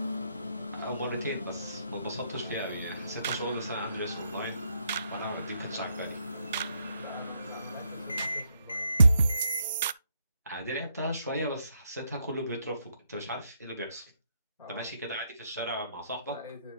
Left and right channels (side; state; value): both; inverted; correlation -0.76